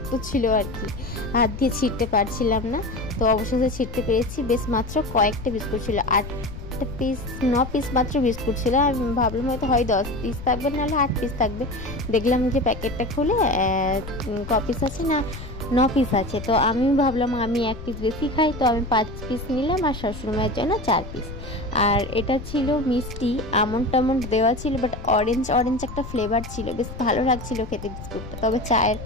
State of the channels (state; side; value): noise; left; rumble, 11 dB below the sound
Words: ছিল আর কি, হাত দিয়ে ছিঁড়তে পারছিলাম না। তো অবশেষে ছিঁড়তে পেরেছি। বেশ মাত্র কয়েকটা বিস্কুট ছিল, 9 পিস মাত্র বিস্কুট ছিল। আমি ভাবলাম হয়তো 10 পিস থাকবে, নাহলে 8 পিস থাকবে। দেখলাম যে প্যাকেটটা খুলে ক পিস আছে না, 9 পিস আছে। তো আমি ভাবলাম আমি 1 পিস বেশি খাই, তো আমি 5 পিস নিলাম আর শাশুড়িমায়ের জন্য 4 পিস। আর এটা ছিল মিষ্টি, আমন্ড টামন্ড দেওয়া ছিল, বাট অরেঞ্জ একটা ফ্লেভার ছিল, বেশ ভালো লাগছিল খেতে বিস্কুটটা। তবে